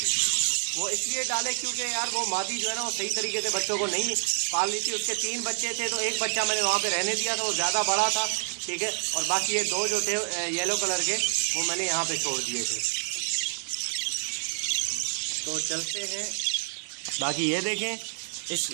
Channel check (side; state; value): left; silent; digital silence